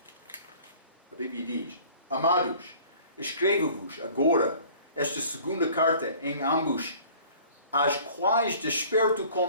A Bíblia diz: Amados, escrevo-vos agora esta segunda carta em ambos, as quais desperto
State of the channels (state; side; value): inverted; both; correlation -0.50